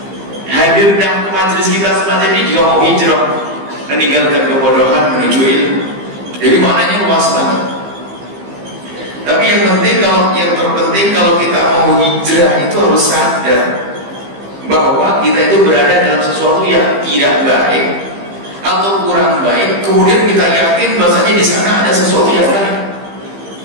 Hadir dalam majelis kita semacam ini juga mau hijrah, meninggalkan kebodohan menuju ilmu. Jadi maknanya luas banget. Tapi yang terpenting kalau kita mau hijrah itu harus sadar bahwa kita itu berada dalam sesuatu yang tidak baik atau kurang baik, kemudian kita yakin bahasanya di sana ada sesuatu yang baik.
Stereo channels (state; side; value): late; left; 15 ms